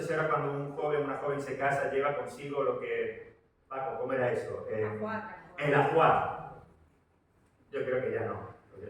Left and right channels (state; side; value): identical; both; correlation 1.00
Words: si ahora cuando un joven o una joven se casa lleva consigo lo que... Paco, ¿cómo era eso? El ajuar. Yo creo que ya no,